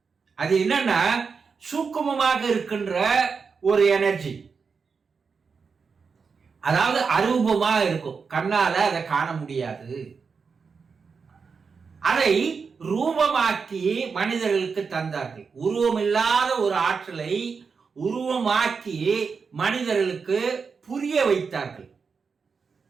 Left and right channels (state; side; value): quieter; left; 5.4 dB